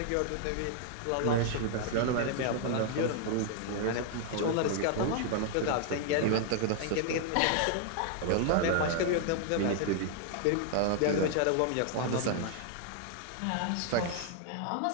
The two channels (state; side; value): different; both; correlation 0.00